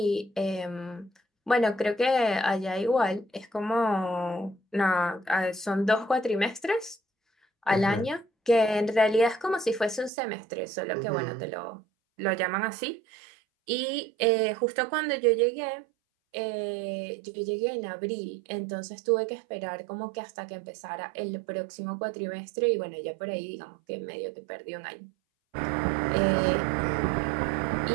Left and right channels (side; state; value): left; drops out; at 10.1 s